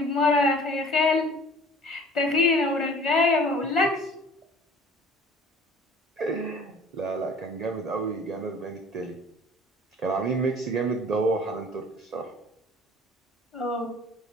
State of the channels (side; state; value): both; normal; correlation 0.48